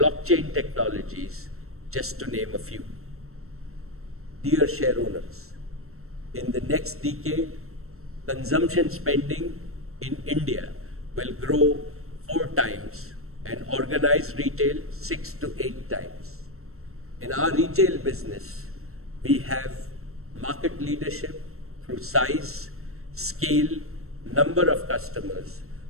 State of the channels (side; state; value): left; late; 0.63 ms